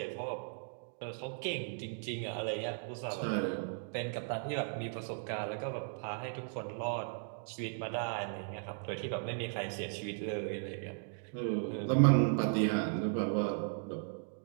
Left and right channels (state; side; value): silent; left; digital silence